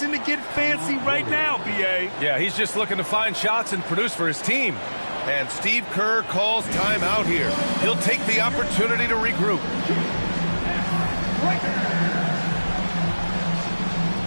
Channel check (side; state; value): both; inverted; correlation -1.00